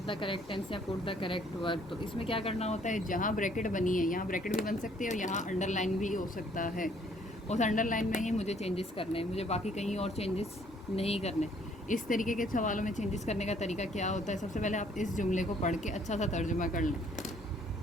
द करेक्ट टेंस या पुट द करेक्ट वर्ब, तो इसमें क्या करना होता है, जहाँ ब्रैकेट बनी है यहाँ ब्रैकेट भी बन सकती है और यहाँ अंडरलाइन भी हो सकता है। उस अंडरलाइन में ही मुझे चेंजेस करने हैं, मुझे बाकी कहीं और चेंजेस नहीं करने। इस तरीके के सवालों में चेंजेस करने का तरीका क्या होता है, सबसे पहले आप इस जुमले को पढ़ के अच्छा सा तर्जुमा कर लें।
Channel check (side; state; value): both; normal; correlation 0.63